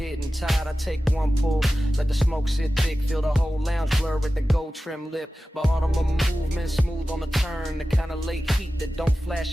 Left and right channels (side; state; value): both; normal; correlation 0.95